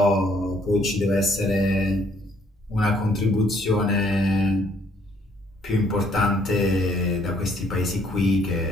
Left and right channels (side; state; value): both; normal; correlation 0.65